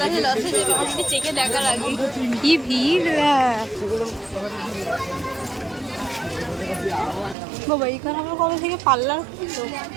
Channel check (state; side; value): drops out; left; at 7.4 s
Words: কাছে লসে যাবে, আমাকে চেকে দেখার আগে। কি ভিড় বাবা, এখানে আমরা কবে থেকে পার্লার